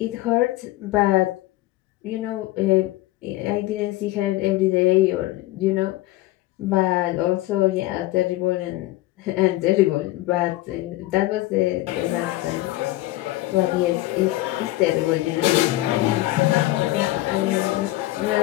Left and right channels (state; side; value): quieter; right; 17.6 dB